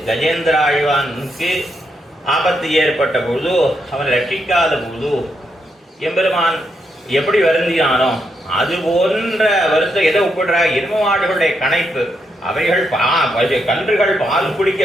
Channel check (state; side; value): normal; both; correlation 0.80